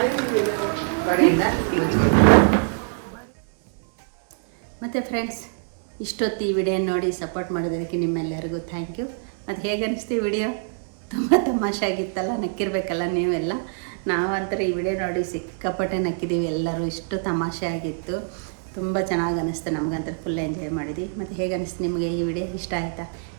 ಮತ್ತು ಫ್ರೆಂಡ್ಸ್, ಇಷ್ಟೊತ್ತು ಈ ವಿಡಿಯೋ ನೋಡಿ ಸಪೋರ್ಟ್ ಮಾಡೋದಕ್ಕೆ ನಿಮ್ಮೆಲ್ಲರಿಗೂ ಥ್ಯಾಂಕ್ ಯು. ಮತ್ತು ಹೇಗೆ ಅನ್ನಿಸ್ತು ಈ ವಿಡಿಯೋ? ತುಂಬ ತಮಾಷೆ ಆಗಿತ್ತಲ್ಲ, ನಕ್ಕಿರ್ಬೇಕಲ್ಲ ನೀವೆಲ್ಲ. ನಾವಂತರ ಈ ವಿಡಿಯೋ ನೋಡಿ ಸಿಕ್ಕಾಪಟ್ಟೆ ನಕ್ಕಿದ್ದೀವಿ ಎಲ್ಲರೂ. ಇಷ್ಟು ತಮಾಷೆ ಆಗಿತ್ತು, ತುಂಬ ಚೆನ್ನಾಗಿ ಅನ್ನಿಸ್ತು. ನಮಗಂತೂ ಫುಲ್ ಎಂಜಾಯ್ ಮಾಡಿದ್ವಿ. ಮತ್ತು ಹೇಗೆ ಅನ್ನಿಸ್ತು ನಿಮಗೆ ಈ ವಿಡಿಯೋ? ಇಷ್ಟ ಆಯಿತಾ?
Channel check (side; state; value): left; silent; digital silence